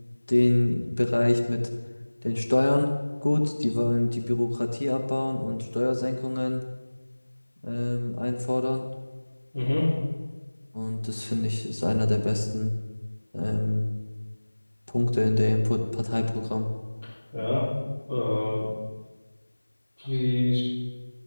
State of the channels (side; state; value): both; inverted; correlation -1.00